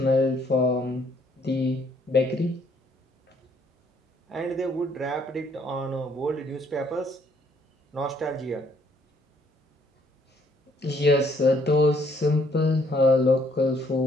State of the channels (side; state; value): both; normal; correlation 0.66